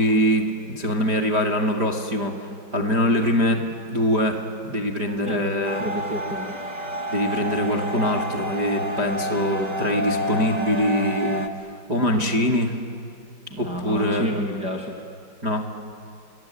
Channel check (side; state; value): left; late; 5.0 ms